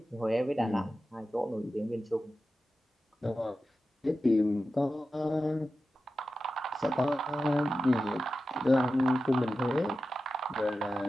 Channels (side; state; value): both; normal; correlation 0.92